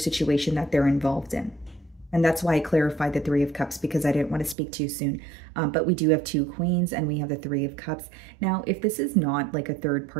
that they're involved in. And that's why I clarified the Three of Cups, because I didn't want to speak too soon. But we do have 2 queens and we have the 3 of cups. Now, if this is not like a third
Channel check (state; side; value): drops out; left; at 4.5 s